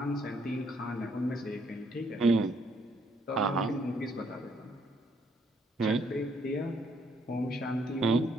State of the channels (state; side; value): normal; both; correlation 0.70